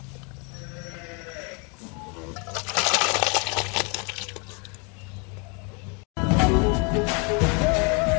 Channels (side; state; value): right; quieter; 33.7 dB